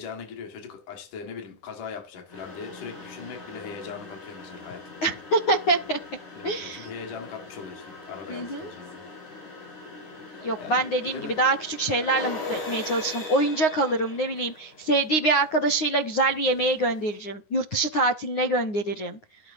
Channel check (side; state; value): right; late; 9.7 ms